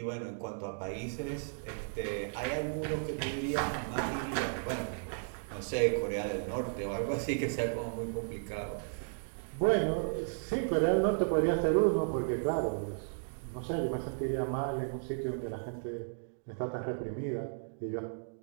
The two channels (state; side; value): silent; left; digital silence